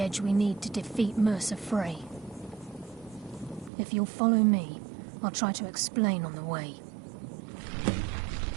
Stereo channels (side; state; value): left; drops out; at 3.7 s